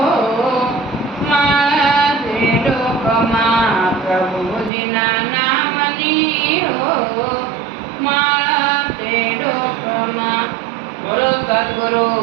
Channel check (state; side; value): drops out; left; at 4.7 s